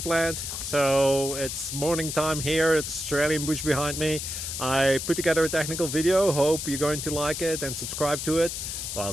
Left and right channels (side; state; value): left; noise; hiss, 5 dB below the sound